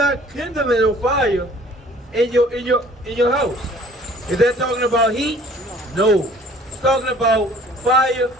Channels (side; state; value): both; normal; correlation 0.53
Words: kindling no fire in your house. Is that talking about heat? No. It's talking about fire